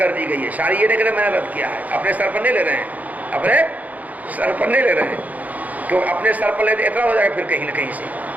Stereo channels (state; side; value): late; left; 0.077 ms